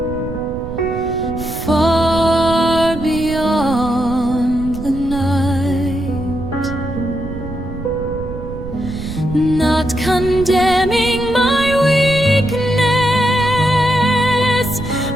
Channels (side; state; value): right; noise; rumble, 10 dB below the sound